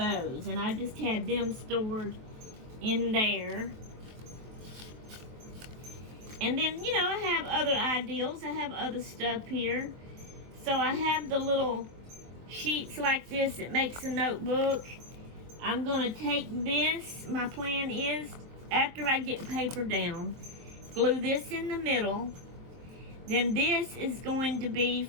and I just had them stored in there. And then, you know, I have other ideals. I have other stuff here. So I have the little sheets like this that makes a notebook. I'm going to take this. My plan is, after I get paper down, glue this in the middle. Then this is going to be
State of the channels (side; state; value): left; late; 23 ms